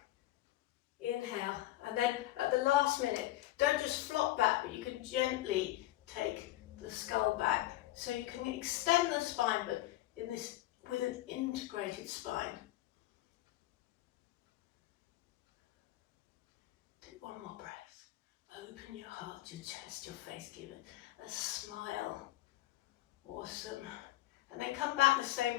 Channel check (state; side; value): quieter; right; 16.2 dB